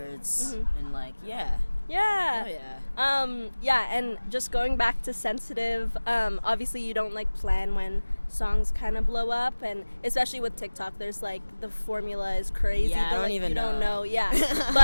and like yeah. Yeah. Oh, yeah. Yeah, and just going back to Sensitive, obviously you don't like plan when songs kind of blow up, and especially with TikTok, there's like the formula is crazy. Yeah, but, I don't like, even you don't know. know. Yeah.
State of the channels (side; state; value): both; inverted; correlation -1.00